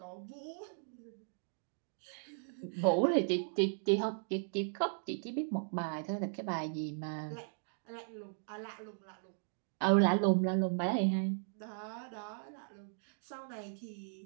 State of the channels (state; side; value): silent; left; digital silence